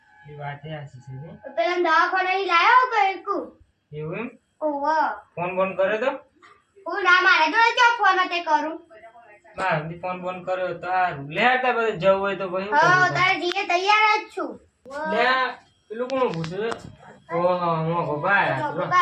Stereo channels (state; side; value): identical; both; correlation 1.00